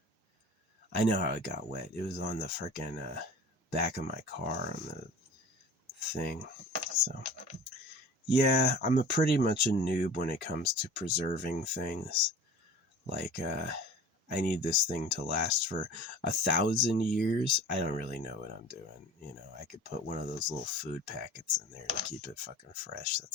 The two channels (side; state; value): both; normal; correlation 0.40